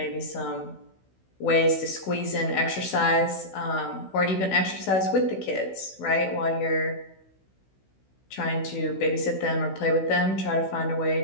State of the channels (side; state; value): right; late; 16 ms